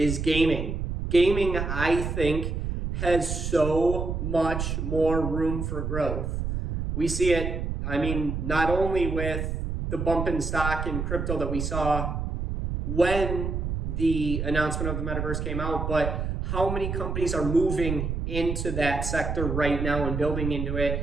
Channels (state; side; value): noise; right; rumble, 3 dB below the sound